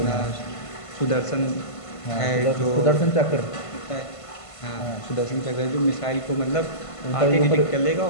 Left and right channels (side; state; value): right; late; 1.5 ms